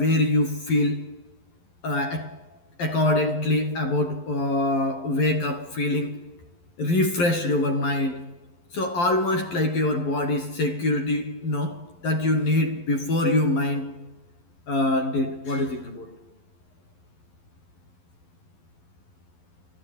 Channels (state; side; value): late; right; 11 ms